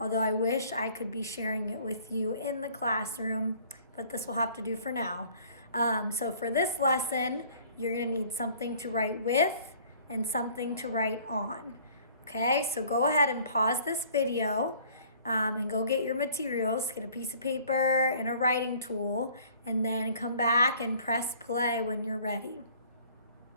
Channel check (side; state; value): both; inverted; correlation -0.54